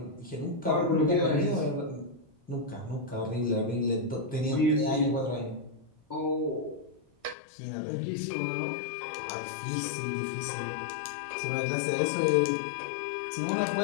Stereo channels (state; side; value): drops out; right; at 7.4 s